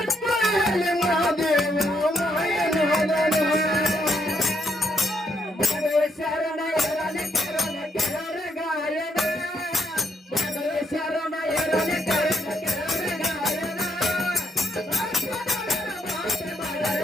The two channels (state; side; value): normal; both; correlation 0.74